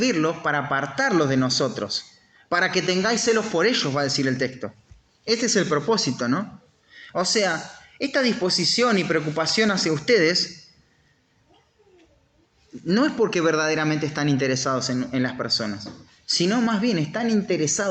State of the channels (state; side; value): identical; both; correlation 1.00